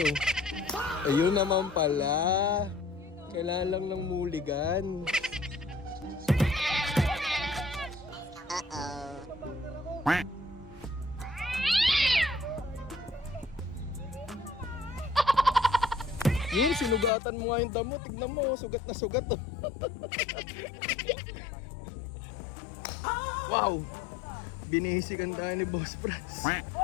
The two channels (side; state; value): right; drops out; at 17.1 s